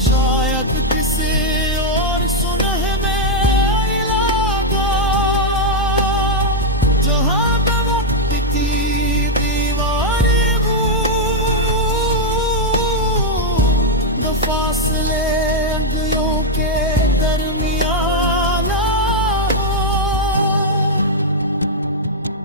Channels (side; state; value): both; normal; correlation -0.01